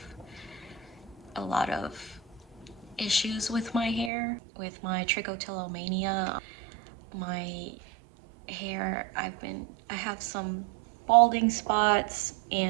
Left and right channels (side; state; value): left; drops out; at 4.1 s